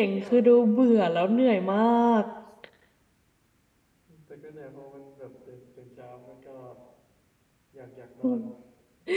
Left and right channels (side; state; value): both; identical; correlation 1.00